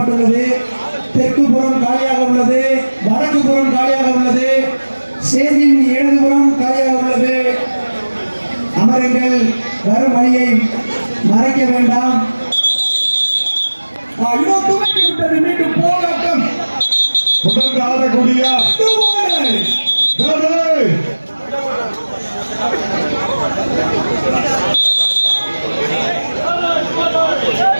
தெற்கு புறம் காலியாக உள்ளது, வடக்கு புறம் காலியாக உள்ளது, ஸ்டேஜின் இடதுபுறம் காலியாக உள்ளது. அமருங்கள். வரும் வழியை மறைக்க வேண்டாம். துவக்கி விட்டது. மீண்டும் போராட்டம் தொடர்ந்து ஆடக்கூடிய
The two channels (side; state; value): both; inverted; correlation -1.00